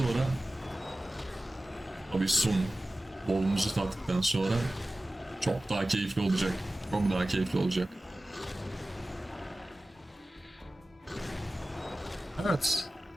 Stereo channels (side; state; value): both; normal; correlation 0.96